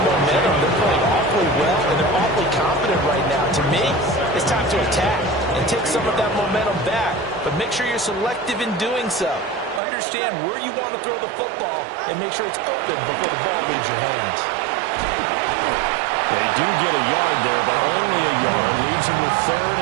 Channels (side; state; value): left; drops out; at 9.8 s